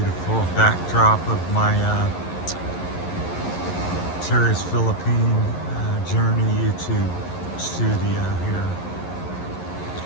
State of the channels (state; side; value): late; right; 11 ms